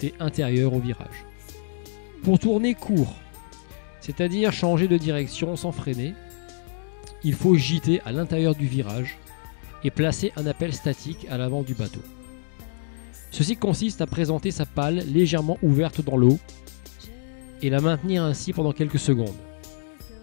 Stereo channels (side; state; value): right; silent; 62 dB below the other